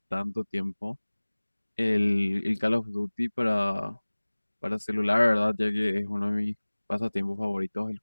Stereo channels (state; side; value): inverted; both; correlation -1.00